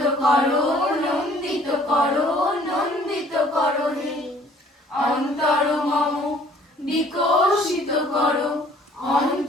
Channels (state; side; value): normal; both; correlation 0.56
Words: করো, নন্দিত করো, নন্দিত করো হে অন্তর মম বিকশিত করো,